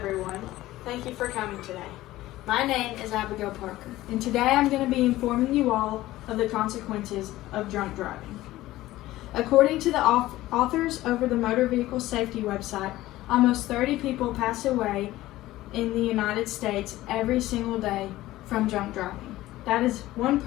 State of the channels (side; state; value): right; quieter; 16.4 dB